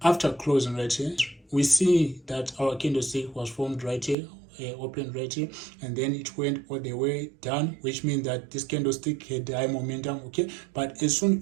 after closing right here, we see that our candlestick was formed right here, opened right here, and then it went all the way down, which means that this candlestick had high momentum. Okay, but as soon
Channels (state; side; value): drops out; left; at 4.2 s